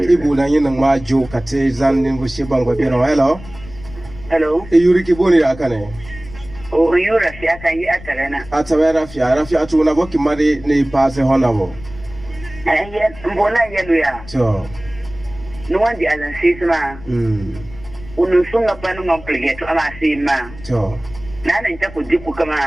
ibu na yin ma jo kate zannin bu shi bangwa biro hello yuri ki boni akane o yura fi aka yi atarena atawera fi arafi atuna boki mari ne passe honabo mbona yelu ya to no wandi alan sisma unusunga panu ngompligeto ama sima to nana nta ko diku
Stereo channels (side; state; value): left; noise; rumble, 17 dB below the sound